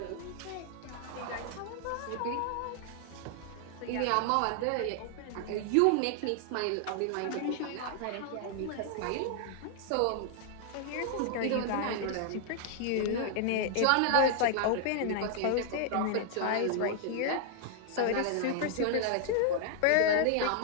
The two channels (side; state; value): both; different; correlation 0.00